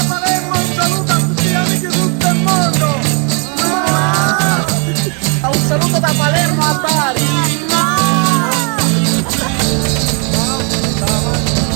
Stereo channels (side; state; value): left; quieter; 35.4 dB